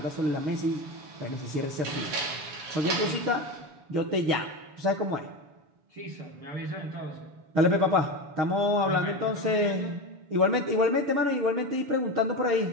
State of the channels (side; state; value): left; late; 7.0 ms